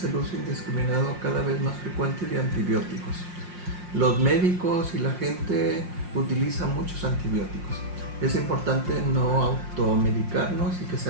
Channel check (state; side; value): late; left; 5.6 ms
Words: el uso indiscriminado, cada vez más frecuente, de antibióticos. Los médicos y la gente utilizan muchos antibióticos. Es importante no automedicarnos y que